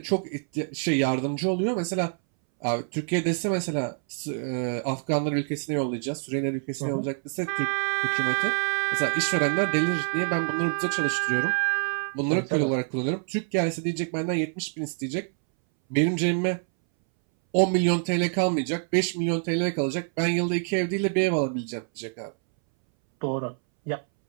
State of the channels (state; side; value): silent; left; 61 dB below the other